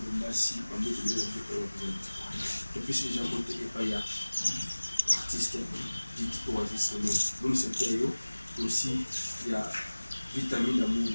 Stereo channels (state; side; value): inverted; both; correlation -1.00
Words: Bassi, en mode de et puis si les gens montent et pas y a artiste dit Oasis donc c'est période aussi il y a vitamine d'amour